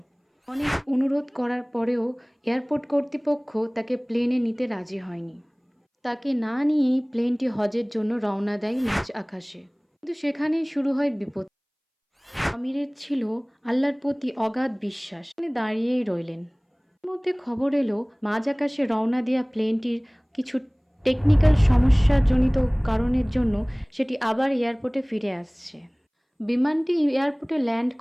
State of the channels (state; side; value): identical; both; correlation 1.00